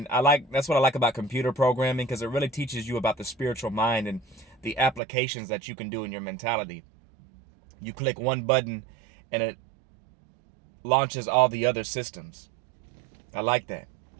that's what I like about computer programming, because it really teaches you about the spiritual mind and the applications that you can do in your mentality. You click one button and it launches all the other systems. I like that.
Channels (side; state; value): left; drops out; at 5.0 s